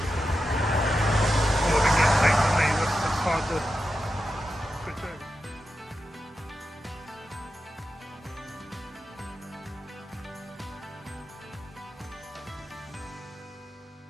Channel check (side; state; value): both; normal; correlation 0.90